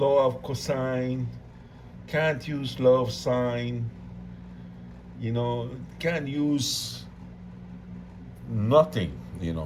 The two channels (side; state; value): both; identical; correlation 1.00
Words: of cosine, can't use law of sine, can't use nothing,